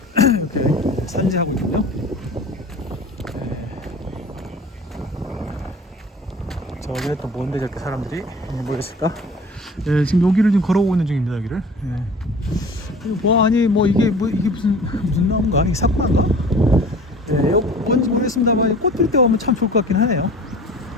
이렇게 산지하고 있군요. 저기는 또 뭔데 저렇게 사람들이 모였을까? 지금 여기를 지금 걸어오고 있는 중입니다. 여기를. 이게 무슨 나무인가? 이게 사쿠라인가? 뭔지 모르겠습니다만 꽃 필 때 오면 참 좋을 것 같긴 하네요.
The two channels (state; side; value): normal; both; correlation 0.43